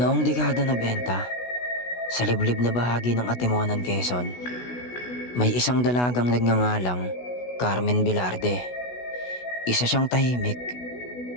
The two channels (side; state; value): right; late; 16 ms